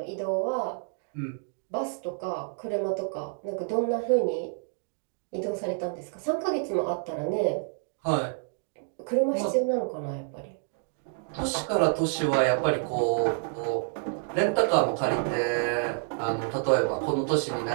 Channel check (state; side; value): silent; left; digital silence